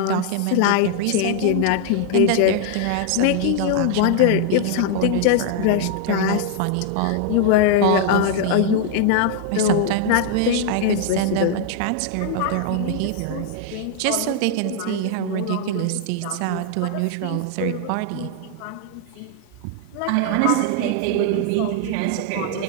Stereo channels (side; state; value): both; different; correlation 0.00